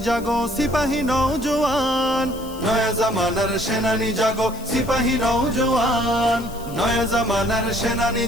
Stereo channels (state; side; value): noise; left; hiss, 19 dB below the sound